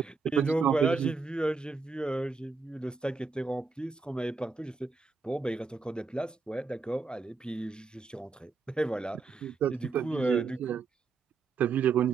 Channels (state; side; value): quieter; left; 4.6 dB